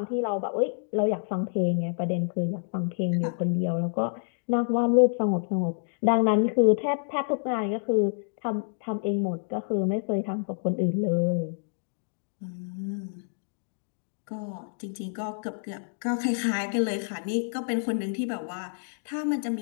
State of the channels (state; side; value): silent; right; digital silence